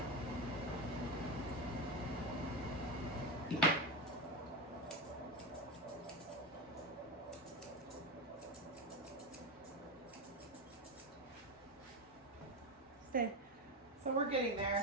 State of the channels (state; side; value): normal; both; correlation 0.15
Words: Stay. So we're getting